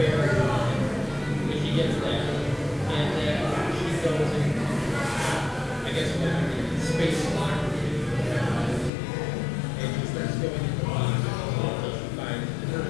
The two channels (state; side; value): drops out; right; at 8.9 s